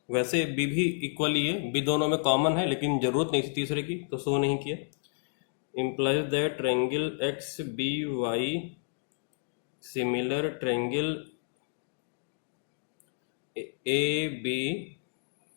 वैसे बी भी इक्वल ही है, बी दोनों में कॉमन है, लेकिन जरूरत नहीं थी तीसरे की तो शो नहीं किया। implies that triangle X B Y similar triangle A B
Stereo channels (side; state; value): right; silent; digital silence